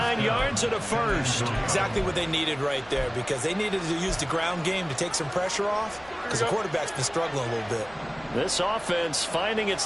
yards and a first. Exactly what they needed right there because they needed to use the ground game to take some pressure off because the quarterback's been struggling a little bit. This offense finding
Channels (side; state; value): right; noise; hum, 24 dB below the sound